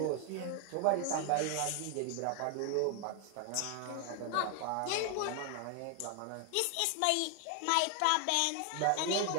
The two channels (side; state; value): both; different; correlation 0.00